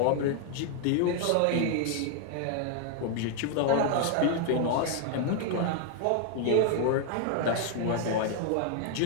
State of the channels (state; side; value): different; both; correlation 0.00